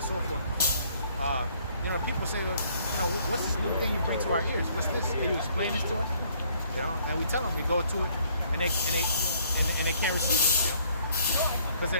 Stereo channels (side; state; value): both; inverted; correlation -0.63